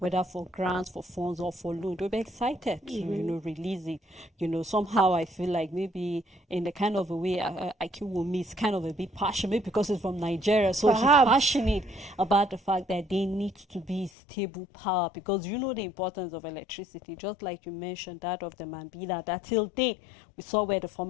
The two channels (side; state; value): right; drops out; at 14.1 s